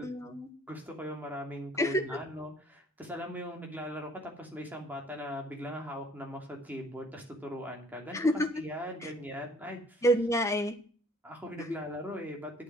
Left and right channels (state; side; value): normal; both; correlation 0.57